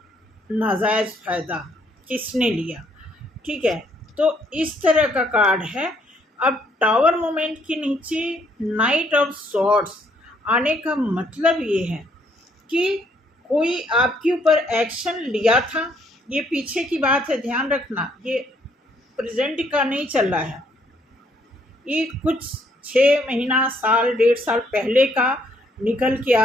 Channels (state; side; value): normal; both; correlation 0.68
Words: नाजायज़ फ़ायदा किसने लिया। ठीक है, तो इस तरह का कार्ड है। अब टावर मोमेंट के नीचे नाइट ऑफ सॉर्ड्स आने का मतलब ये है कि कोई आपके ऊपर एक्शन लिया था। ये पीछे की बात है, ध्यान रखना, ये प्रेजेंट का नहीं चल रहा है। ये कुछ 6 महीना, साल, 1.5 साल पहले का निकल के